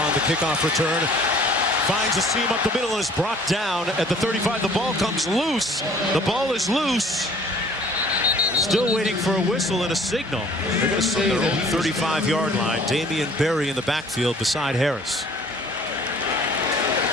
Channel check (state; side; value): normal; both; correlation 0.53